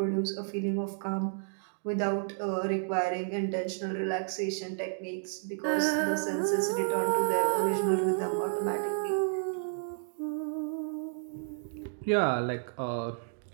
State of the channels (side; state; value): left; silent; digital silence